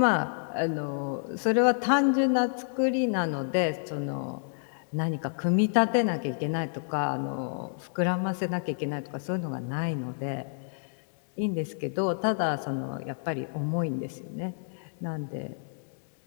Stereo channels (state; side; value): silent; right; digital silence